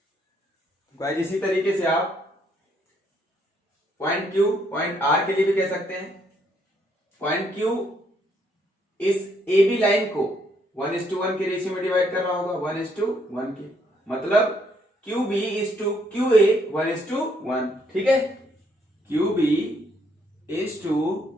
गाइस इसी तरीके से आप पॉइंट क्यू पॉइंट आर के लिए भी कह सकते हैं। पॉइंट क्यू इस ए बी लाइन को 1:1 के रेशियो में डिवाइड करना होगा, 1:1 के, मतलब Q B is to Q A 1:1, ठीक है। Q B is to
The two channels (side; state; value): both; normal; correlation 0.71